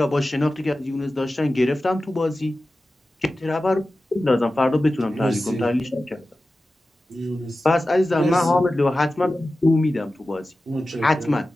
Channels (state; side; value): normal; both; correlation 0.94